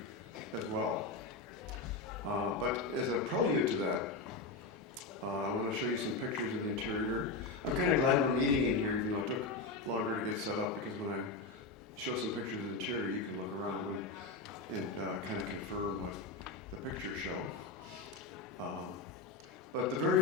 as well. But as a prelude to that, I want to show you some pictures of the interior. I'm kind of glad we're meeting in here, even though it took longer to get set up, because when I show some pictures of the interior, you can look around and kind of confirm what the pictures show. But the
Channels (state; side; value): quieter; right; 3.6 dB